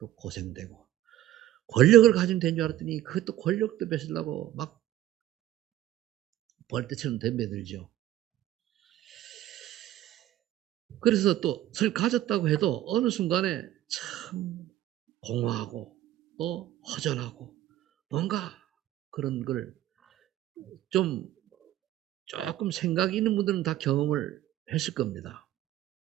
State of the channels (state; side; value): quieter; left; 13.4 dB